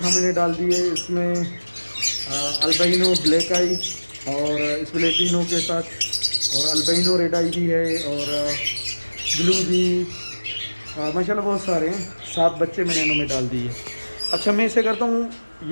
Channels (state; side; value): inverted; both; correlation -1.00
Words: मैंने डाल दिए। इसमें अल्बाइनो ब्लैक आई और स्प्लेटिनो के साथ, और अल्बाइनो रेड आई भी है, और ब्लू भी, माशाल्लाह बहुत सारे हैं। 7 बच्चे मैंने इनों में डाल दिए। अच्छा, मैं इसे करता हूँ,